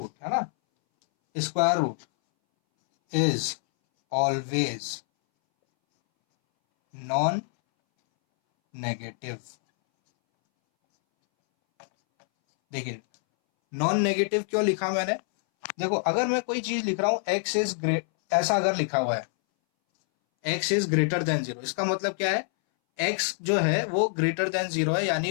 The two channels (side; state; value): right; silent; 61 dB below the other